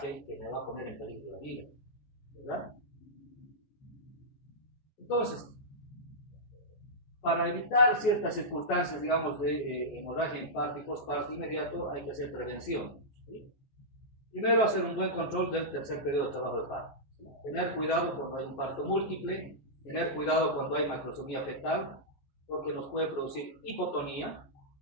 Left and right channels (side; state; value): right; late; 14 ms